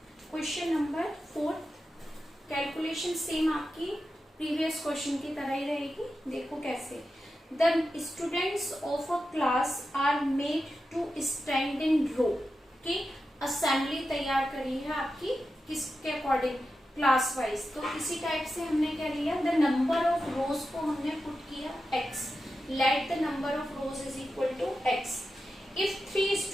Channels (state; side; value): normal; both; correlation 0.91